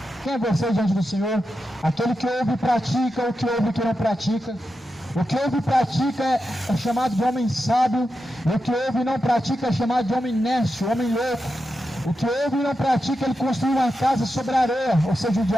Quem é você diante do Senhor? Aquele que ouve e pratica, o que ouve e que não pratica. O que ouve e pratica é chamado de homem sábio, e o que ouve e não pratica é chamado de homem nécio, homem louco. O que ouve e não pratica, ele construiu uma casa sobre a areia, ou seja, o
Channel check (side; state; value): both; normal; correlation 0.89